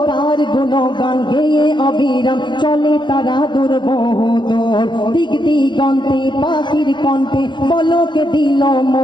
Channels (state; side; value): late; right; 0.22 ms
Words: তার গুণগান গেয়ে অবিরাম চলে তারা দূর বহুদূর। দিক দিগন্তে পাখির কণ্ঠে বলকে দিল